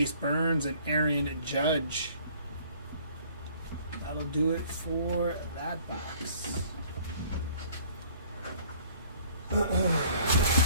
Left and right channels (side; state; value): both; inverted; correlation -0.55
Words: Burns and Aaron Judge. That'll do it for that box.